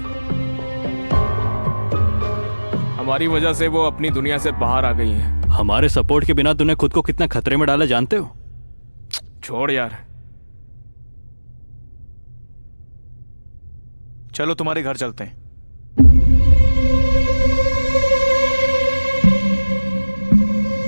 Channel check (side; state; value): both; inverted; correlation -1.00